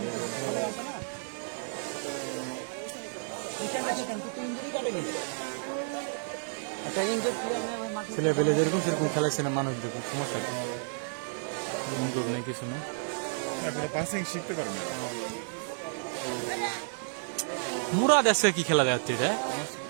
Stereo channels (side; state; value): left; silent; digital silence